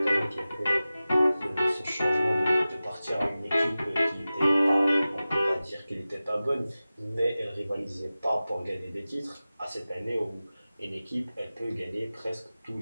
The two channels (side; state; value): both; inverted; correlation -0.96